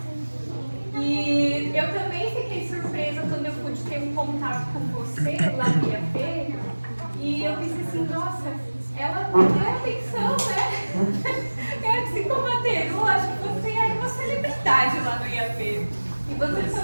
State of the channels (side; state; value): both; inverted; correlation -1.00